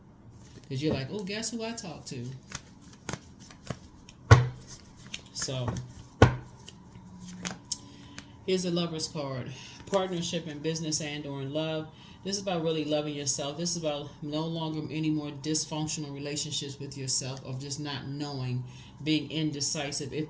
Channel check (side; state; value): both; identical; correlation 1.00